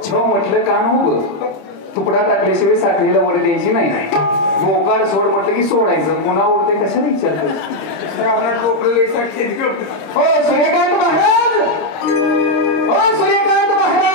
छव म्हटलं काम उभं. तुकडा टाकल्याशिवाय साखळीला वर द्यायची नाही. मोकार सोड म्हटलं की सोडायचं. मुला उडते कशाला विचारतो. हो सूर्यकांत महाराज. हो सूर्यकांत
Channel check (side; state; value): right; late; 26 ms